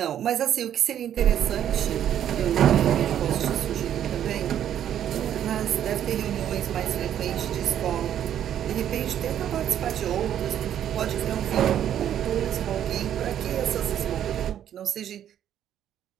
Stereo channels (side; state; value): left; quieter; 10.3 dB